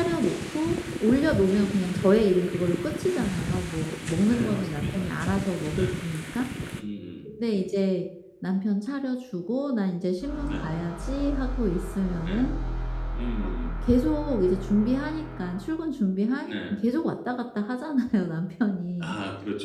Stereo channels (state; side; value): identical; both; correlation 1.00